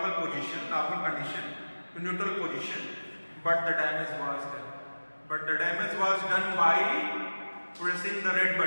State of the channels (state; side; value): inverted; both; correlation -1.00